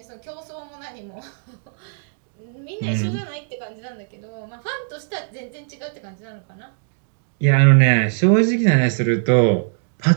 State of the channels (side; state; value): left; silent; digital silence